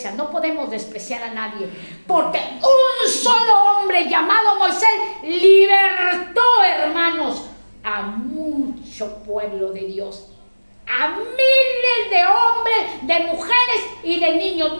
no podemos despreciar a nadie, porque un solo hombre llamado Moisés libertó, hermanos, a mucho pueblo de Dios, a miles de hombres, de mujeres y de niños,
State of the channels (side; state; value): both; inverted; correlation -1.00